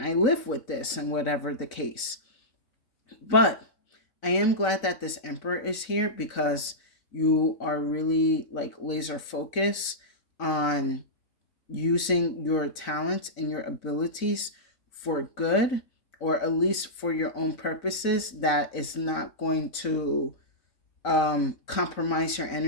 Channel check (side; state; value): right; late; 4.0 ms